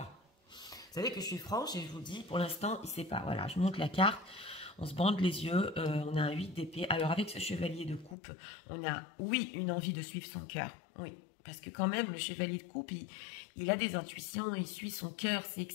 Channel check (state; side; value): drops out; right; at 8.2 s